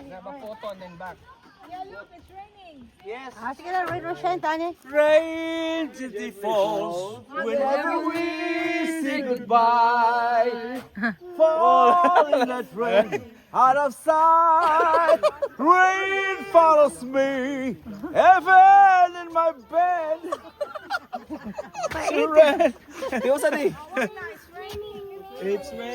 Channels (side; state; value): both; identical; correlation 1.00